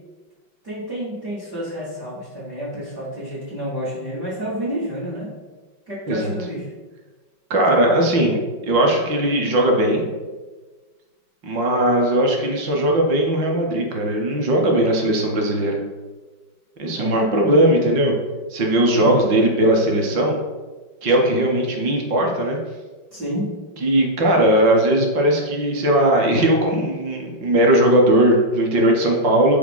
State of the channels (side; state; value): left; late; 5.3 ms